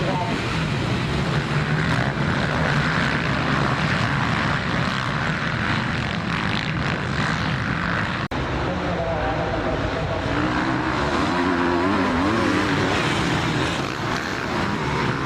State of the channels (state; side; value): identical; both; correlation 1.00